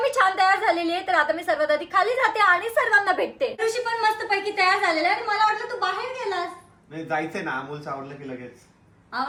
मी छान तयार झालेली आहे तर आता मी सर्वात आधी खाली जाते आणि सर्वांना भेटते. ऋषी पण मस्तपैकी तयार झालेला आहे आणि मला वाटलं तू बाहेर गेलास. नाही जायचंय ना, अमोलचं आवडलं की लगेच.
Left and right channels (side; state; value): both; identical; correlation 1.00